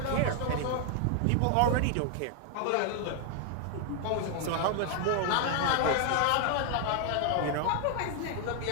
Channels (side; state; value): both; different; correlation 0.00